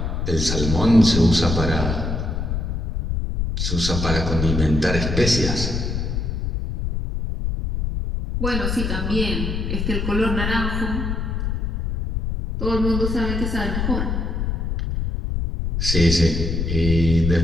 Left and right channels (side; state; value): left; noise; rumble, 1 dB below the sound